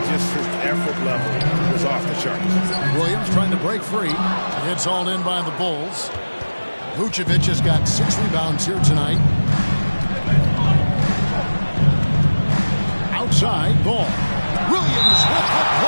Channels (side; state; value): both; inverted; correlation -1.00